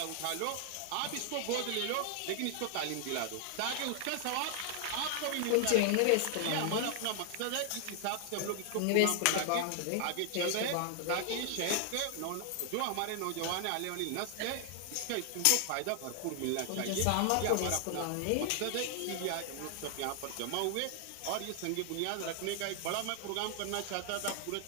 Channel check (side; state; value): both; different; correlation 0.00